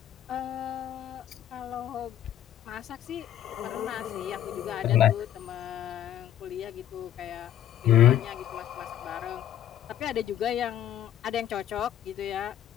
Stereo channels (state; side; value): quieter; right; 11.0 dB